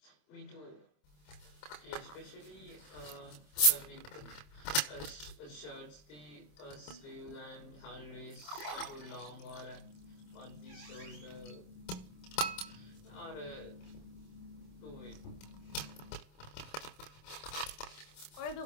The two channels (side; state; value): right; late; 27 ms